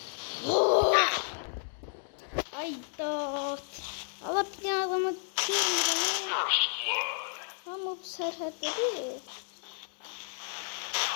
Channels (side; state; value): right; silent; digital silence